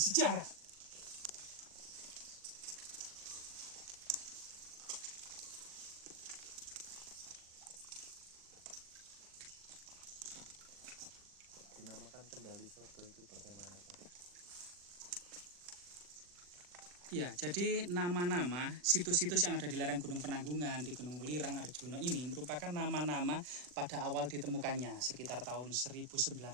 Dinamakan Kendali Sodo itu bagaimana Pak? Ya, jadi nama-nama situs-situs yang ada di lereng Gunung Penanggungan, di Gunung Welirang, Arjuna ini merupakan nama-nama pada awal ditemukannya sekitar tahun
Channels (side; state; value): left; late; 40 ms